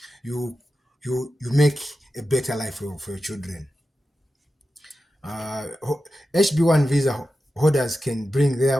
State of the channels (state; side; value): normal; both; correlation 0.92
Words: you make a better life for your children. HB1 visa holders can bring